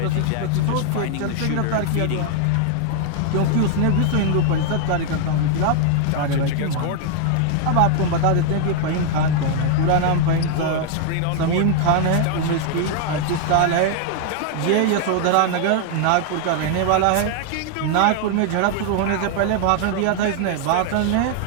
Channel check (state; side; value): different; both; correlation 0.00